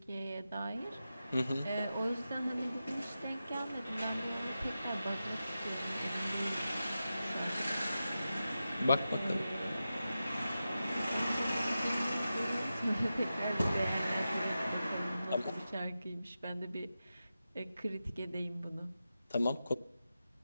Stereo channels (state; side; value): inverted; both; correlation -0.92